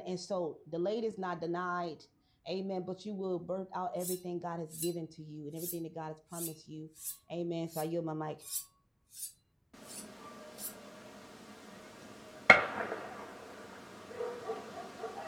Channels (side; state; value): both; identical; correlation 1.00